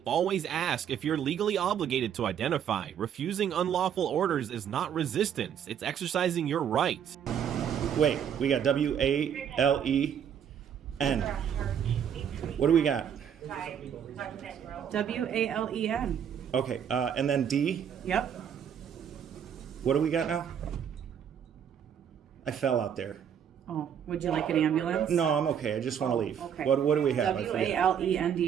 Always ask if you're legally obligated to identify. Refusing unlawful orders is not resistance, it's exercising your rights. Wait, we got W-A-L-E-N. What do we got? W-A-L-E-N. Okay, and then D. Yep. What do we got now? I fell out there. Oh, would you like an ambulance? No, I'm okay. I just want to leave. Okay. What do we have? I forget.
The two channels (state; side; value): quieter; left; 8.5 dB